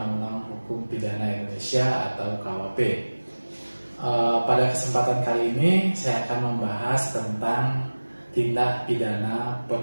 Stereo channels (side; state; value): both; inverted; correlation -1.00